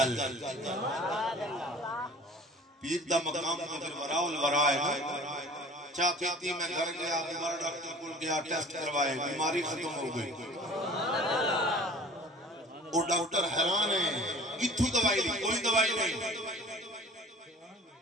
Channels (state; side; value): normal; both; correlation 0.46